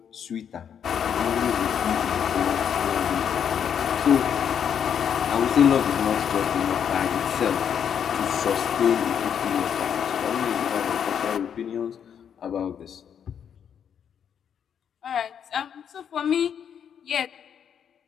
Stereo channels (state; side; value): quieter; right; 8.2 dB